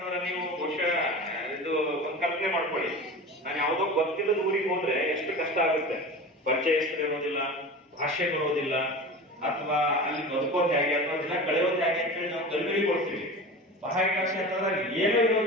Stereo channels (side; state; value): both; normal; correlation 0.32